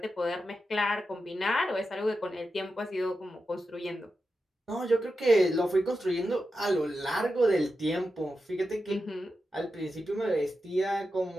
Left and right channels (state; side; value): normal; both; correlation 0.90